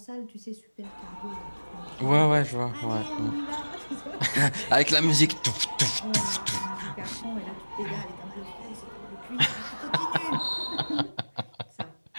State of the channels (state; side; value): inverted; both; correlation -1.00